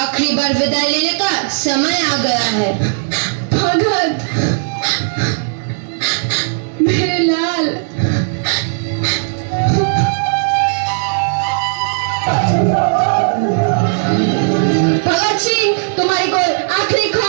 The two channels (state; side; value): silent; left; 58 dB below the other